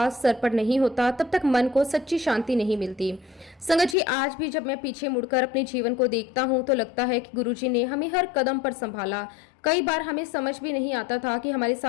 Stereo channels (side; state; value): right; drops out; at 4.0 s